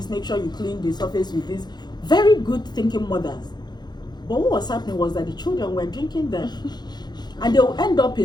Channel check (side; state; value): right; late; 0.21 ms